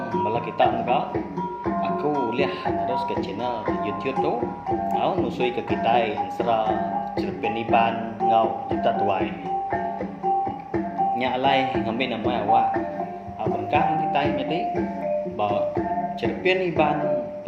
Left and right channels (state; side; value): identical; both; correlation 1.00